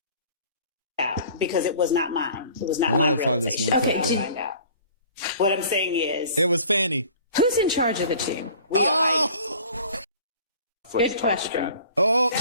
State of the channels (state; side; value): inverted; both; correlation -0.48